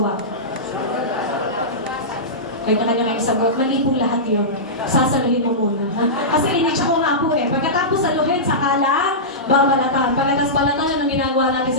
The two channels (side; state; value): both; normal; correlation -0.16